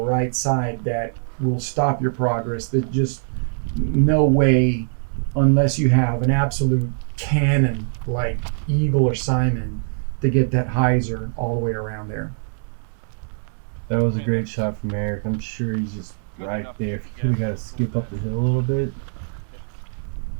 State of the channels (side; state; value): left; silent; digital silence